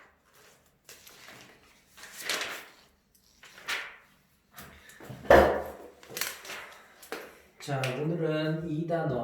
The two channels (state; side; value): identical; both; correlation 1.00